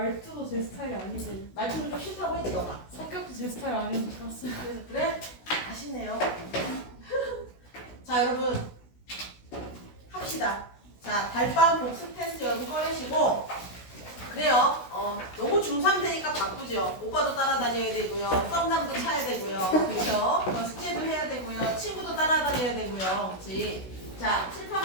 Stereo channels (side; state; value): right; late; 16 ms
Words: 제 스타일이 아니고 말투는 좀 싫다고 했지 너가. 성격도 제 스타일 아니고 좋았어요. 그래? 아쉽네요. 자 여러분 합시다. 자 달방 복습 테스트 여러분 꺼내시고 그래요. 너무 중3 되니까 바쁘죠. 오빠도 따라다녀야 되고요. 썸남도 차야 되고요. 그렇죠? 숙제도 해야 되고요. 친구도 따라다녀야 되고요. 그렇지? 자